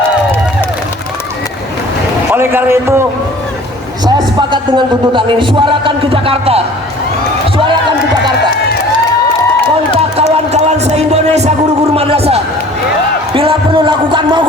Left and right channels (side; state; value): both; normal; correlation 0.48